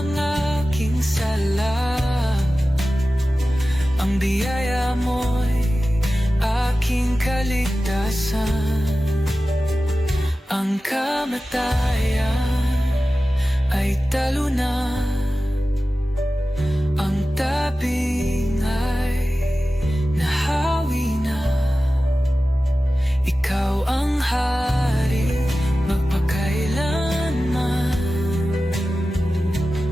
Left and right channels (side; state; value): both; normal; correlation 0.95